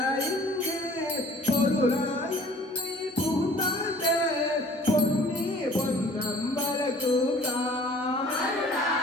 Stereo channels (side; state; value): both; normal; correlation 0.51